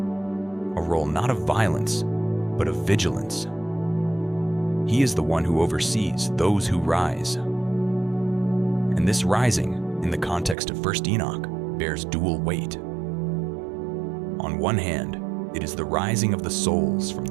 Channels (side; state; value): left; drops out; at 10.6 s